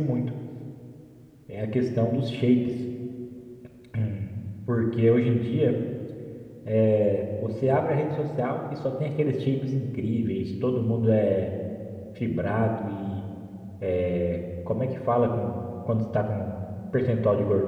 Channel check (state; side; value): identical; both; correlation 1.00